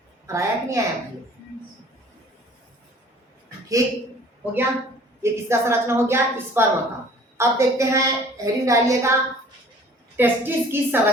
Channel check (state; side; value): normal; both; correlation 0.51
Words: आया कि नहीं आया भाई? ठीक हो गया, ये किसका संरचना हो गया, स्पर्म का। अब देखते हैं हेडिंग डालिए का टेस्टिस की